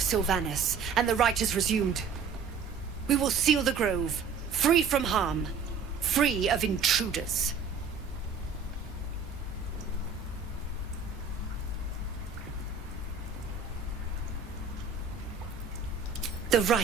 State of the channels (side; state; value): left; quieter; 5.6 dB